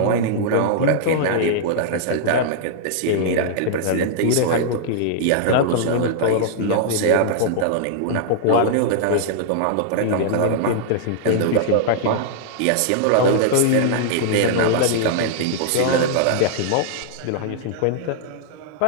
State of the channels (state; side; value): different; both; correlation -0.01